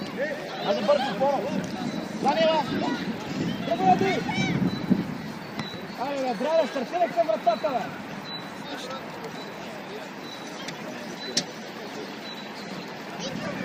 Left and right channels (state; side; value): identical; both; correlation 1.00